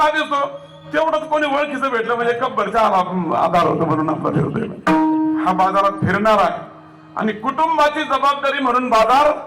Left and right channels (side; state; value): both; identical; correlation 1.00